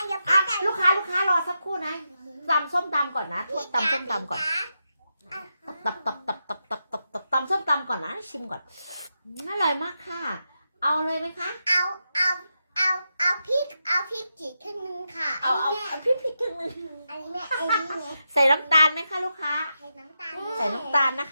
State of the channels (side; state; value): both; inverted; correlation -0.87